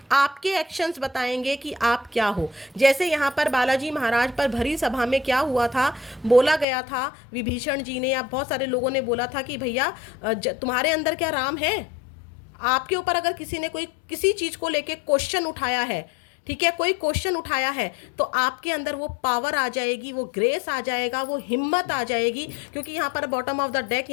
आपके एक्शंस बताएंगे कि आप क्या हो। जैसे यहाँ पर बालाजी महाराज पर भरी सभा में क्या हुआ था, बोला गया था विभीषण जी ने या बहुत सारे लोगों ने बोला था कि भैया तुम्हारे अंदर क्या राम है। आपके ऊपर अगर किसी ने कोई किसी चीज़ को लेके क्वेश्चन उठाया है, ठीक है, कोई क्वेश्चन उठाया है, तो आपके अंदर वो पावर आ जाएगी, वो ग्रेस आ जाएगा, वो हिम्मत आ जाएगी। क्योंकि यहाँ पर बॉटम ऑफ द डेक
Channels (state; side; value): drops out; right; at 6.7 s